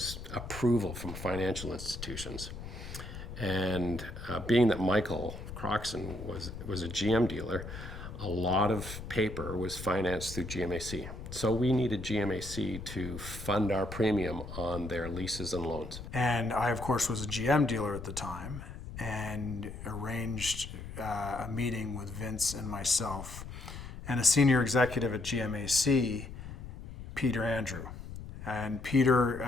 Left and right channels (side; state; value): left; noise; rumble, 11 dB below the sound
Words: approval from financial institutions. And being that Michael Croxon was a GM dealer, a lot of paper was financed through GMAC. So we needed GMAC to fund our premium on their leases and loans. And I, of course, was a GM dealer at the time and arranged a meeting with Vince and myself and a senior executive at GMAC, Peter Andrew. And